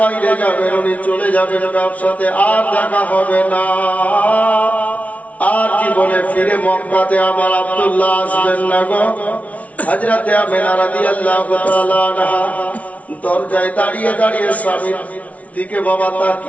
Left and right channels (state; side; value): late; right; 0.068 ms